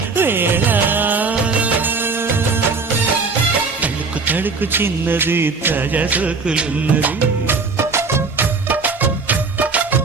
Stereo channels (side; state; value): left; quieter; 4.4 dB